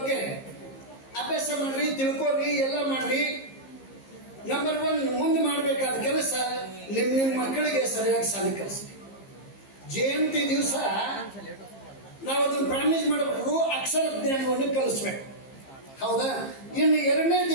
ಅಭ್ಯಾಸ ಮಾಡ್ರಿ, ತಿಳ್ಕೊರಿ, ಎಲ್ಲ ಮಾಡ್ರಿ. ನಂಬರ್ 1 ಮುಂದೆ ಮಾಡಬೇಕಾದ ಕೆಲಸ ನಿಮ್ಮ ಮಕ್ಕಳಿಗೆ ಸರಿಯಾಗಿ ಶಾಲೆ ಕಲಿಸಿ. ಜಯಂತಿ ದಿವಸ ನಾವು ಅದನ್ನು ಪ್ರಾಮಿಸ್ ಮಾಡಬೇಕು, ಅಕ್ಷರ ಜ್ಞಾನವನ್ನು ಕಲಿಸ್ಬೇಕು. ಹೌದಾ? ಇನ್ನು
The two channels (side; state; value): right; late; 15 ms